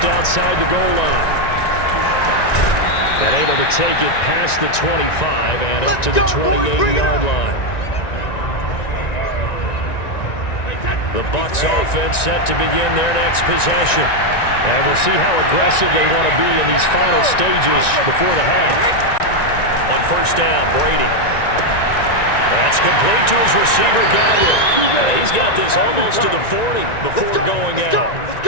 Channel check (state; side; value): late; right; 1.9 ms